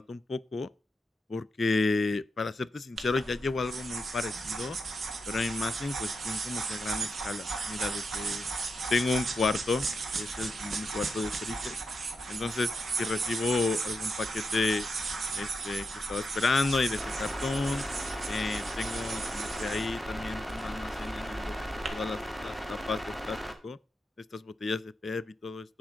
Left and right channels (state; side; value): normal; both; correlation 0.86